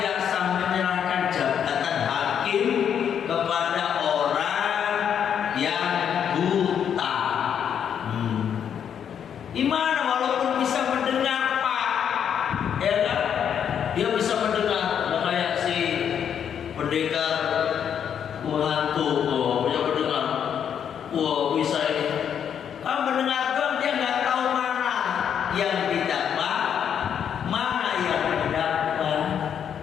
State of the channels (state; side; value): quieter; right; 8.4 dB